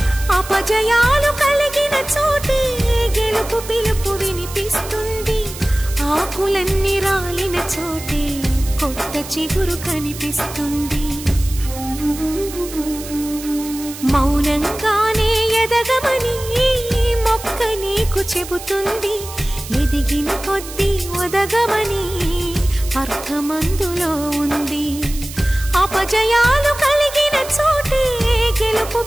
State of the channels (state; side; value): noise; right; hiss, 13 dB below the sound